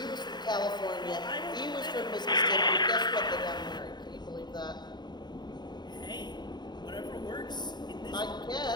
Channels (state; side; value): late; right; 0.21 ms